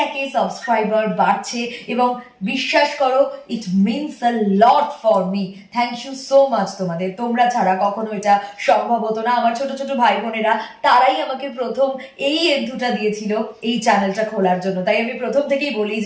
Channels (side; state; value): both; identical; correlation 1.00